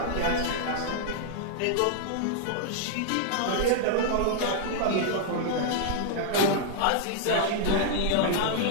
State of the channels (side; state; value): both; different; correlation -0.01